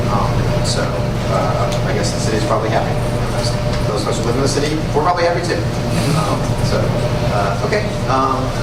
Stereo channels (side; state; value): both; identical; correlation 1.00